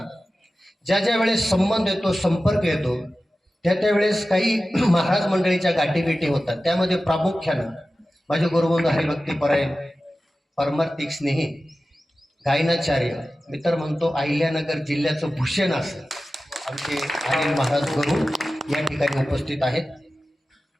ज्या ज्या वेळेस संबंध येतो, संपर्क येतो, त्या त्यावेळेस काही महाराज मंडळीच्या गाठीभेटी होतात. त्यामध्ये प्रामुख्यानं माझे गुरुबंधू हरिभक्तीपरायण, परमार्थिक स्नेही, गायनाचार्य, मी तर म्हणतो अहिल्यानगर जिल्ह्याचं भूषण असं आमचे अनिल महाराज गुरु या ठिकाणी उपस्थित आहेत.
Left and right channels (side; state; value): both; normal; correlation 0.95